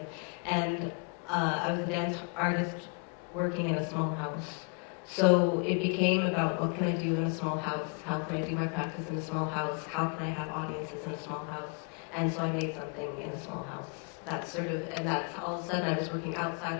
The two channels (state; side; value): quieter; right; 38.9 dB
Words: And I was a dance artist working in a small house. So it became about, what can I do in a small house? How can I do my practice in a small house? How can I have audiences in a small house? And so I made something in a small house. And that's all of a sudden I was working